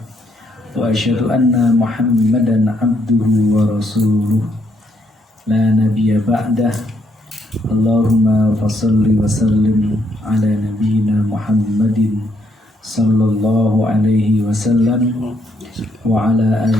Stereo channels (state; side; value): normal; both; correlation 0.73